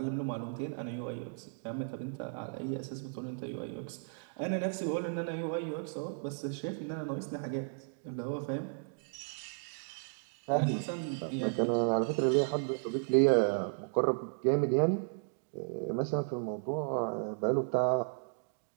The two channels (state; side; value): silent; left; digital silence